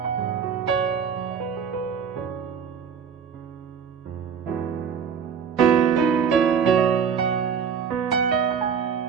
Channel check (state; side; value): quieter; left; 6.9 dB